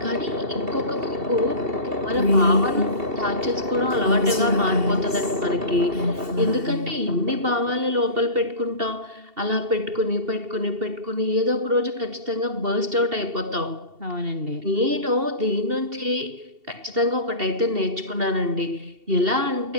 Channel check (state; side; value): late; left; 2.7 ms